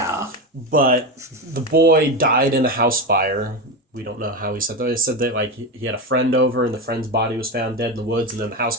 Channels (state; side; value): normal; both; correlation 0.17